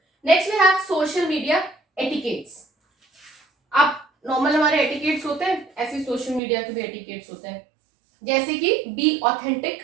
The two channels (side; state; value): left; drops out; at 6.4 s